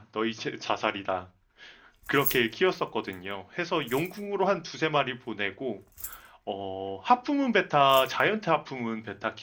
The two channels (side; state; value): both; identical; correlation 1.00